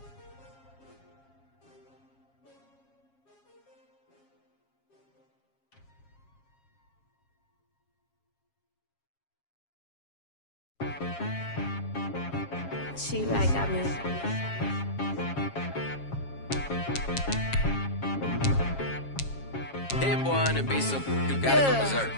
She like got me. That boy on the beat, so you gotta go berserk.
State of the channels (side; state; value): right; late; 7.4 ms